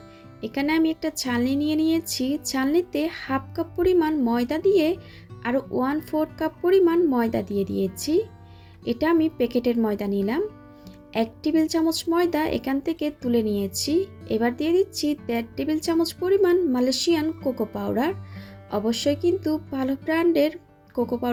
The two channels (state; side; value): identical; both; correlation 1.00